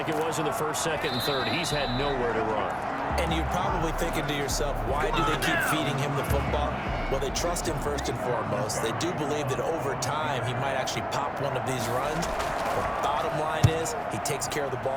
it was in the 1st, 2nd, and 3rd. He's had nowhere to run. And you're probably thinking to yourself, why do they keep feeding him the football? Well, they trust him first and foremost. They do believe that over time he might actually pop one of these runs. The bottom line is he takes care of the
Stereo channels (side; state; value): both; identical; correlation 1.00